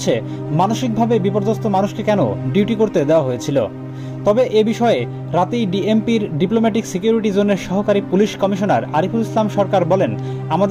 মানসিকভাবে বিপর্যস্ত মানুষকে কেন ডিউটি করতে দেওয়া হয়েছিল? তবে এ বিষয়ে রাতেই ডিএমপির ডিপ্লোম্যাটিক সিকিউরিটি জোনের সহকারী পুলিশ কমিশনার আরিফুল ইসলাম সরকার বলেন,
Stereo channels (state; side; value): identical; both; correlation 1.00